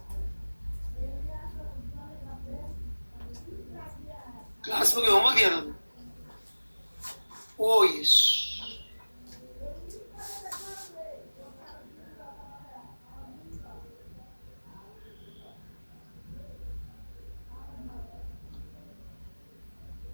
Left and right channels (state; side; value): inverted; both; correlation -1.00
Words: क्लास में कोई होमवर्क दिया था? ओ यस।